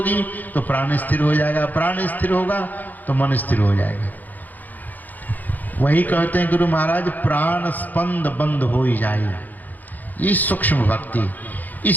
तो प्राण स्थिर हो जाएगा, प्राण स्थिर होगा तो मन स्थिर हो जाएगा। वही कहते हैं गुरु महाराज, प्राण स्पंद बंद हो ही जाए। ये सूक्ष्म भक्ति,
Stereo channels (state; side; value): late; right; 0.083 ms